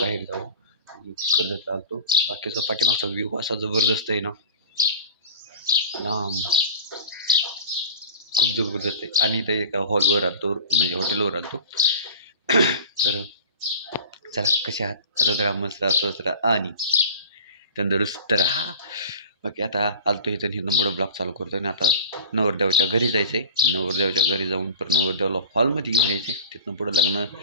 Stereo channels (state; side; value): inverted; both; correlation -0.38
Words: जाऊ आणि कर्जत आलतो. बाकीचा पाठीमागचा व्ह्यू असा जबरदस्त आहे ना, लांब खूप जबरदस्त आहे. आणि इथे एका हॉलवर आलतो, म्हणजे हॉटेलवर आलतो. तर चला कसे आहात, सतत राहा, मस्त राहा, स्वस्त राहा आणि तंदुरुस्त राहा. बाकी आता आलतो इथं इथून पुढं ब्लॉग चालू करतो आणि आता नवरदेवाच्या घरी जायचं आहे. नवरदेवाच्या घरी जाऊन परत नवरदेवाला हॉलमध्ये घेऊन यायचं आहे. तिथनं पुढं